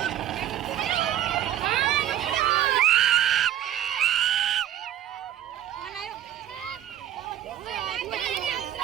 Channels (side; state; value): left; quieter; 12.0 dB